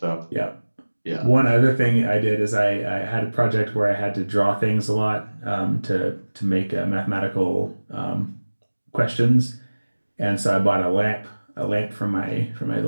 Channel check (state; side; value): inverted; both; correlation -1.00